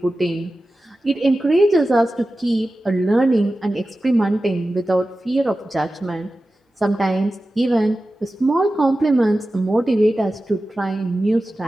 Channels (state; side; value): normal; both; correlation 0.94